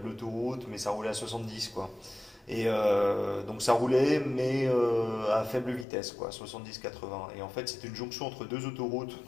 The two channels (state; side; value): drops out; right; at 5.9 s